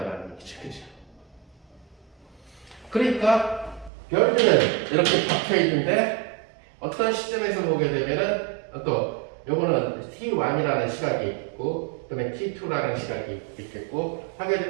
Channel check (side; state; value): left; drops out; at 3.9 s